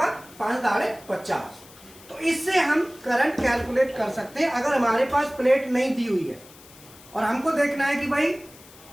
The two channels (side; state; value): left; noise; hiss, 22 dB below the sound